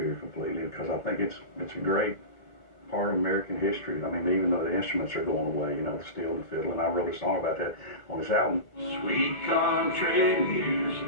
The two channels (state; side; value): late; right; 2.0 ms